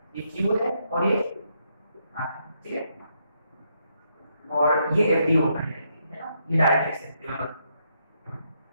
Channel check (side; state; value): both; inverted; correlation -0.77